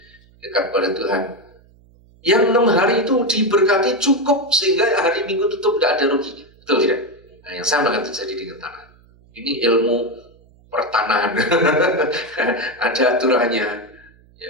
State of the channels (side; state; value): right; noise; hum, 29 dB below the sound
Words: dekat pada Tuhan. Yang 6 hari itu diberkati cukup sehingga hari Minggu tutup tidak ada ruginya. Betul tidak? Nah, yang sama akan terjadi dengan tanah. Ini ilmu pertanahan. Ada aturannya.